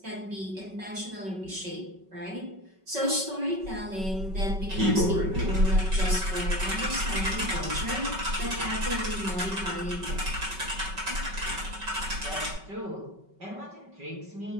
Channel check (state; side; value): late; left; 5.3 ms